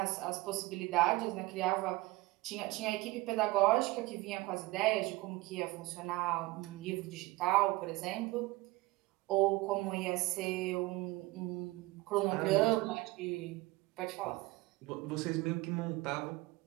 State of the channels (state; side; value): quieter; left; 20.6 dB